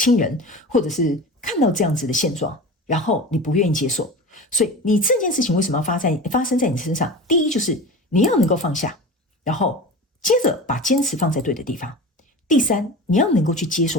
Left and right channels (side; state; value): both; normal; correlation 0.32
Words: 人，或者是看到这样子的现状，然后你不愿意接受。所以你这件事情为什么要发生在你身上？第一就是你要能够放下，然后接着把坚持放在对的地方。第三，你要能够去接